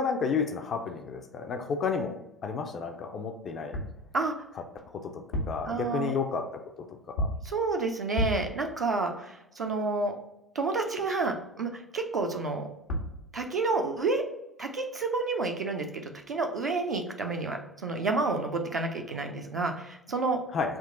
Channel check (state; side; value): normal; both; correlation 0.34